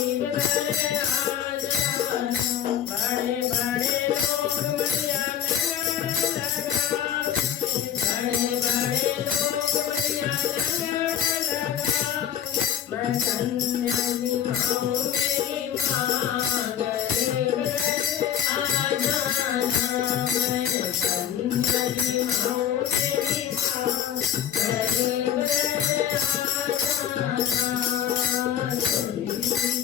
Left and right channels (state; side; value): quieter; right; 9.8 dB